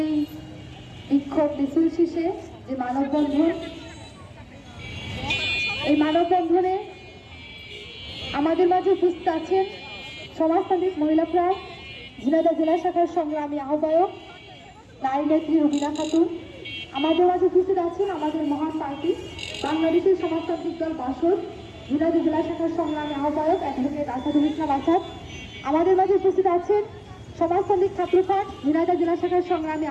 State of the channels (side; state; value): both; identical; correlation 1.00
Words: এই বিক্ষোভ মিছিল শেষে যে মানববন্ধন, এই মানববন্ধনে আমাদের মাঝে উপস্থিত আছেন সমাজতান্ত্রিক মহিলা ফোরাম ঝিনাইদহ জেলা শাখার সংগ্রামী আহ্বায়ক নারী নেত্রী রুবিনা খাতুন। আমাদের মাঝে উপস্থিত আছেন আমাদের মহান পার্টি বাংলাদেশের সমাজতান্ত্রিক দল বাসদ ঝিনাইদহ জেলা শাখার সংগ্রামী আহ্বায়ক অ্যাডভোকেট আসাদুল ইসলাম আসাদ। আমাদের মাঝে উপস্থিত আছেন সমাজতান্ত্রিক ছাত্রফ্রন্ট ঝিনাইদহ জেলা শাখার সংগ্রামী